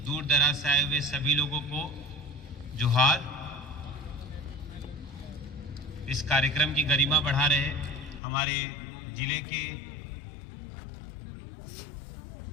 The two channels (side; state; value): right; drops out; at 8.2 s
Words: दूर दराज से आए हुए सभी लोगों को जोहार। इस कार्यक्रम की गरिमा बढ़ा रहे हमारे जिले के